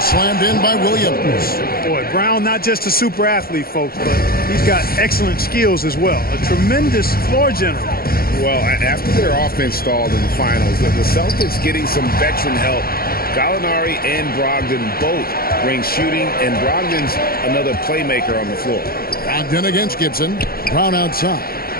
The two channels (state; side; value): late; right; 0.44 ms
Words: slammed in by Williams. Boy, Brown not just a super athlete, folks, but he's got excellent skills as well. A tremendous floor general. Well, after their offense stalled in the finals, the Celtics getting some veteran help. Gallinari and Brogdon both bring shooting, and Brogdon's another playmaker on the floor. Brogdon against Gibson. Brown outside.